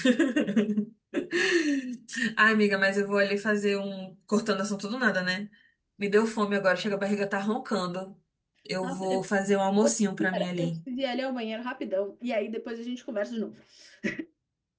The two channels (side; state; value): both; identical; correlation 1.00